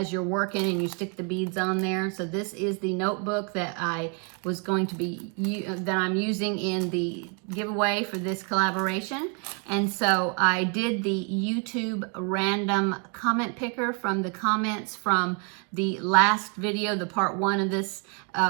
you're working and you stick the beads on there. So this is the notebook that I was going to be, that I'm using in the giveaway for this collaboration. And so I did the YouTube random comment picker from the comments from the last video, the part 1 of this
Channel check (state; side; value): quieter; left; 36.9 dB